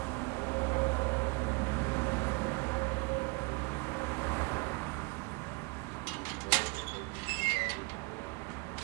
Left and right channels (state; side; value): quieter; left; 29.9 dB